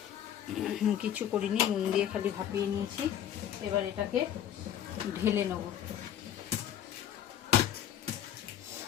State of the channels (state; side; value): quieter; right; 10.4 dB